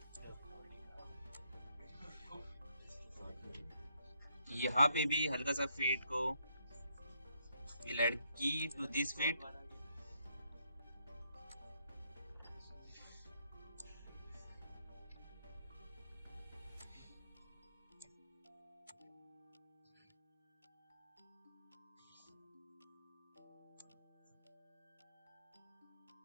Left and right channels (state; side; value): inverted; both; correlation -0.74